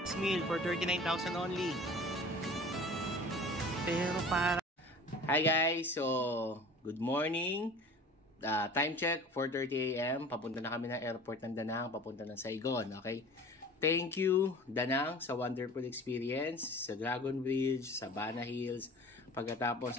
This meal for 39,000 only. Pero para... Hi guys, so good morning. Time check, 4:30 AM. Papunta na kami ng airport ng Danang, papunta ng Saigon, okay? Thank you, Danang, sa wonderful experience, sa Dragon Bridge, sa Bana Hills. Pagkatapos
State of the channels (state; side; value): normal; both; correlation 0.42